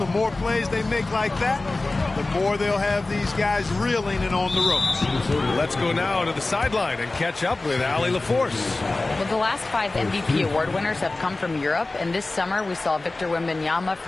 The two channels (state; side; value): quieter; right; 3.1 dB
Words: The more plays they make like that, the more they'll have these guys reeling and on the ropes. Let's go now to the sideline and catch up with Allie LaForce. Well, the last 5 MVP award winners have come from Europe, and this summer we saw Victor Wembanyama